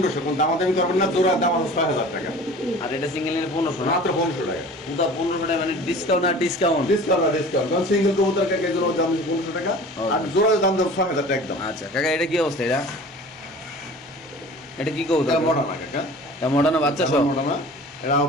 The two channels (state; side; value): normal; both; correlation 0.42